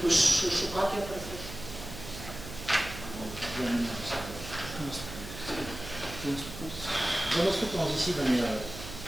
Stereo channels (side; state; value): right; noise; hum, 12 dB below the sound